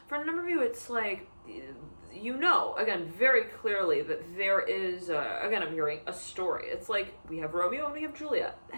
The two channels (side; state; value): both; inverted; correlation -1.00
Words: For a number of you, it's like, you know, again, very clearly that there is, again, I'm hearing a story. It's like we have Romeo and we have Juliet.